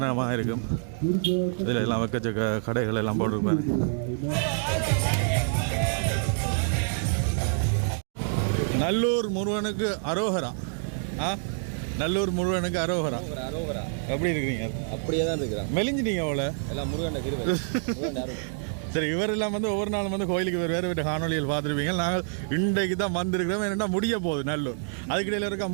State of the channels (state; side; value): silent; left; digital silence